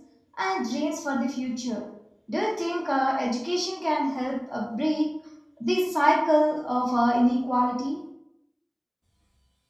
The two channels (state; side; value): identical; both; correlation 1.00